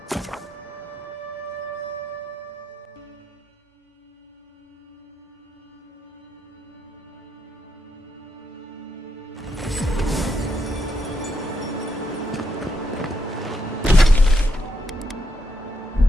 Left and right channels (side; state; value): both; normal; correlation 0.79